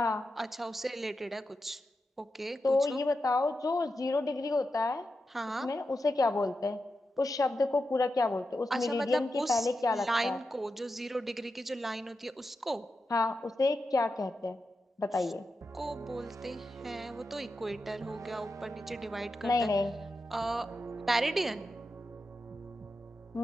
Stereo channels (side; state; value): both; normal; correlation 0.89